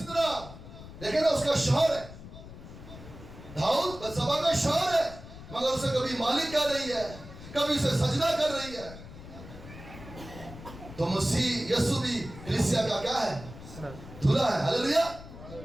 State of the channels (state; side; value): noise; left; rumble, 15 dB below the sound